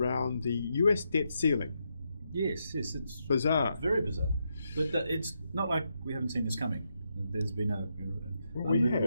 the US debt ceiling. Yes, it's Bizarre. very bizarre. But it's not like we haven't seen this coming. There's been a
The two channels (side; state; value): both; inverted; correlation -0.82